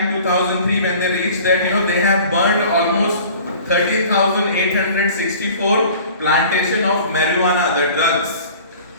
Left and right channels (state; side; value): inverted; both; correlation -0.46